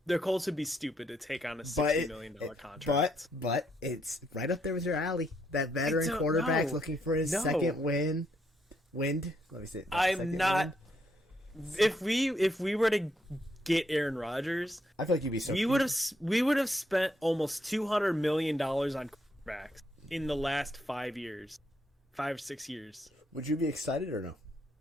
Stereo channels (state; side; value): normal; both; correlation 0.76